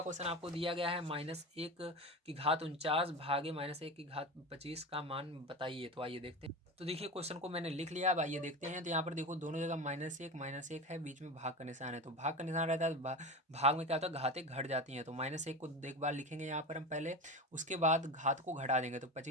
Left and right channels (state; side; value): normal; both; correlation 0.26